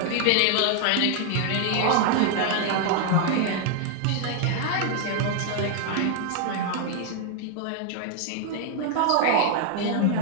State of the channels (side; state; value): both; different; correlation 0.00